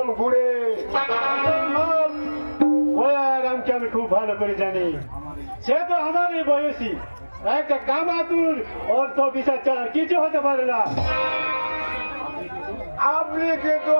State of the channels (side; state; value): both; inverted; correlation -1.00